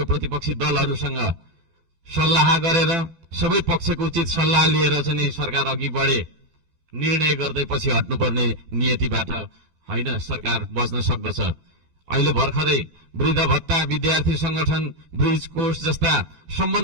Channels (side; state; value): left; late; 12 ms